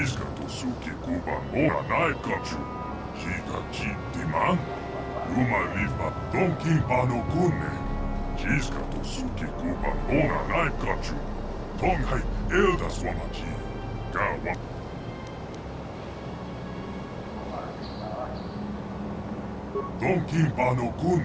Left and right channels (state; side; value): identical; both; correlation 1.00